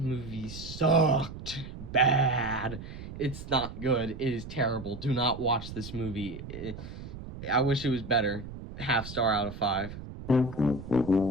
sucked bad. It's not good. It is terrible. Do not watch this movie. I wish it was better. 0.5 star out of 5.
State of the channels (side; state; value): right; noise; rumble, 11 dB below the sound